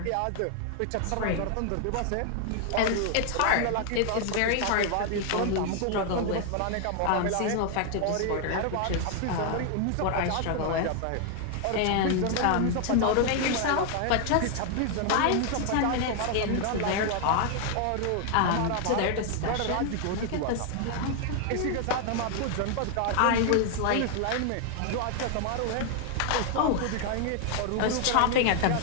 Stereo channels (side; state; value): both; different; correlation 0.00